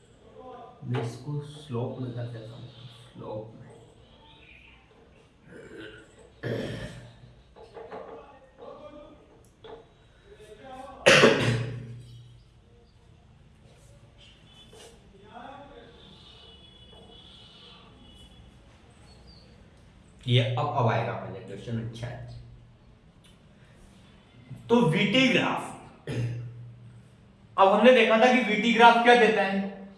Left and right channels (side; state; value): both; identical; correlation 1.00